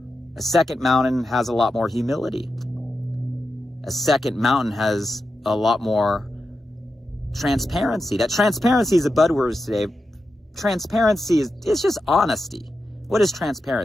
A second mountain has a lot more humility. A second mountain has a lot more transparency. That transparency is a buzzword today. Transparency it's just honesty. What is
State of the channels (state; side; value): normal; both; correlation 0.89